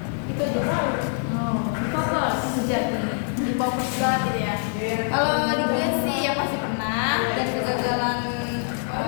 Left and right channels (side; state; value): right; silent; 62 dB below the other